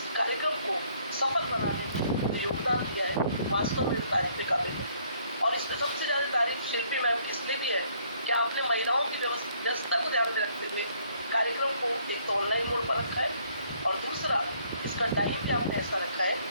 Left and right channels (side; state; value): both; inverted; correlation -0.65